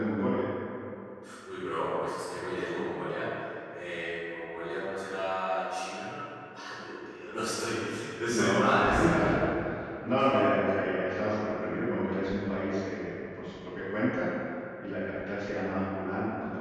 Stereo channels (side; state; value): both; identical; correlation 1.00